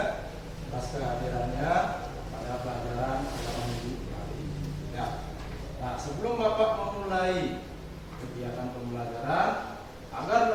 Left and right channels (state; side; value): identical; both; correlation 1.00